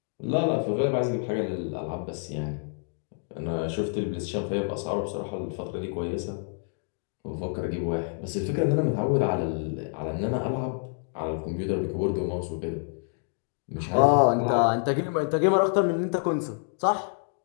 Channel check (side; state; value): right; silent; 59 dB below the other